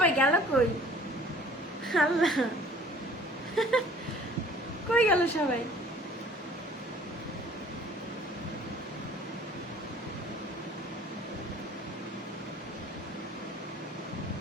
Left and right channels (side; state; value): both; normal; correlation 0.51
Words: গেল কই? আল্লাহ, কই গেল সবাই?